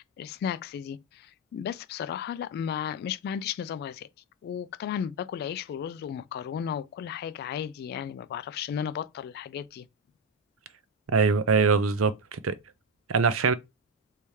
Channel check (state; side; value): normal; both; correlation 0.07